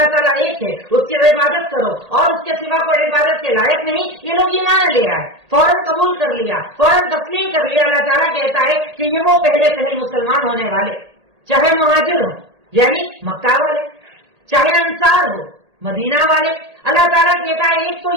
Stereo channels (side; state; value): left; late; 1.8 ms